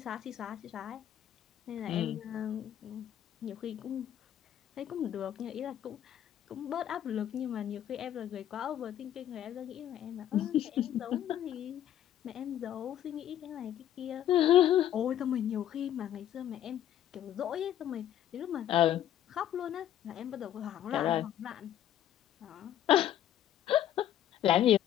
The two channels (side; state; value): right; quieter; 11.2 dB